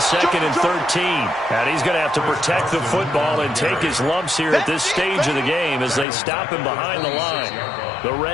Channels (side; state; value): right; drops out; at 6.1 s